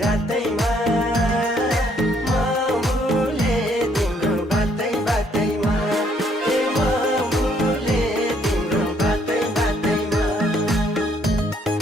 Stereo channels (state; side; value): normal; both; correlation 0.67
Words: रातैमा म भुले तिम्रो बातै बातैमा म भुले तिम्रो बातै बातैमा